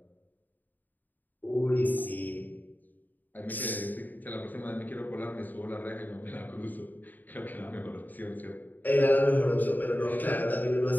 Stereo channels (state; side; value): late; right; 0.086 ms